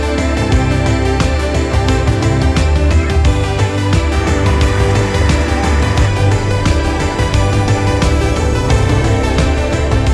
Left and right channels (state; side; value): identical; both; correlation 1.00